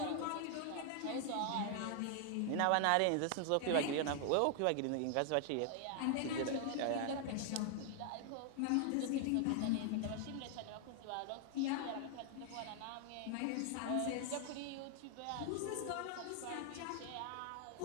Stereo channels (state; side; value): different; both; correlation 0.00